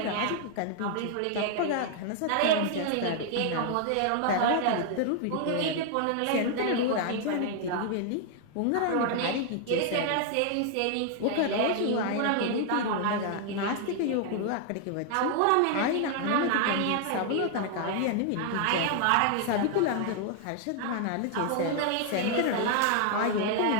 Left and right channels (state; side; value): different; both; correlation 0.00